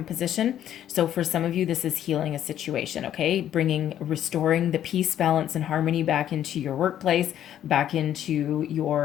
position. So for some of you, this is healing a situation. Okay. Restoring the peace, balance, and harmony back into your workplace, back into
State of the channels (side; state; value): right; quieter; 11.0 dB